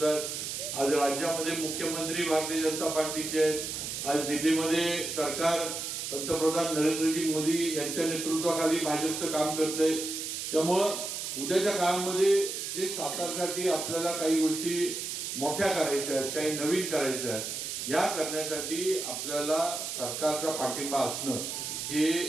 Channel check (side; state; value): right; noise; hiss, 4 dB below the sound